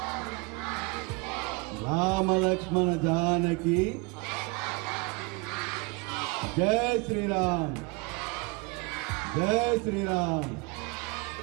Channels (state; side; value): quieter; left; 28.7 dB